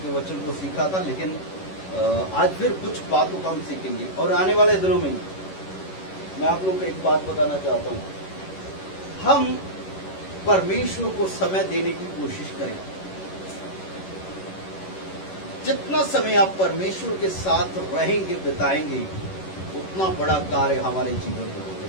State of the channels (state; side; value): late; right; 11 ms